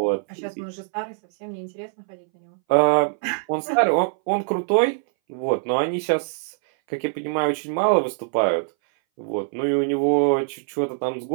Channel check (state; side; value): silent; left; 61 dB below the other